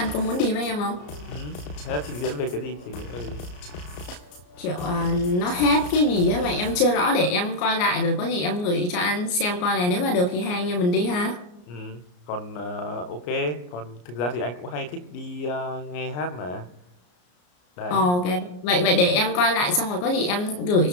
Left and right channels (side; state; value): right; late; 34 ms